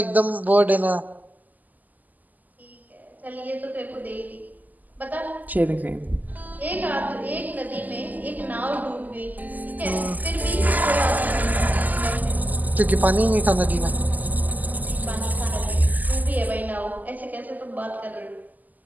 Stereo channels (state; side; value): late; left; 0.082 ms